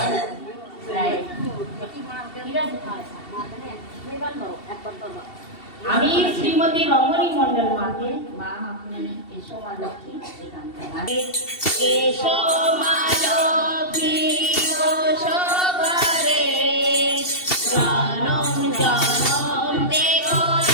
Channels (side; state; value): right; late; 2.7 ms